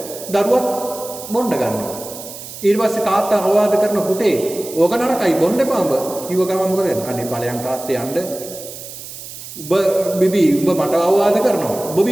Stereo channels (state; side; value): noise; right; hiss, 13 dB below the sound